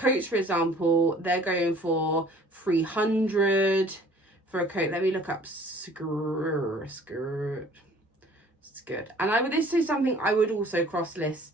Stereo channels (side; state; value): both; normal; correlation 0.52